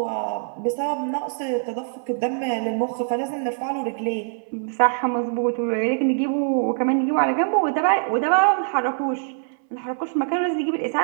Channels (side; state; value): left; silent; 63 dB below the other